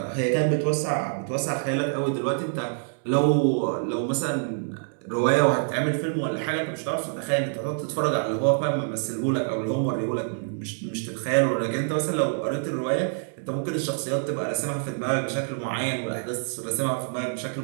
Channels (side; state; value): left; silent; digital silence